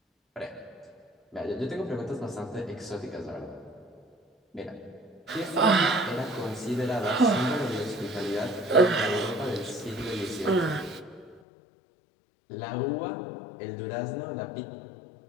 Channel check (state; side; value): drops out; right; at 11.4 s